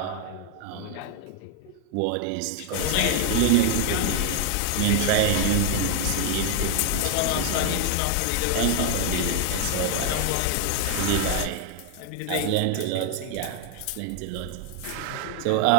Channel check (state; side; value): different; both; correlation 0.00